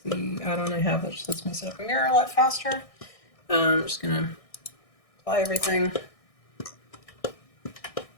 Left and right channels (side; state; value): right; late; 1.6 ms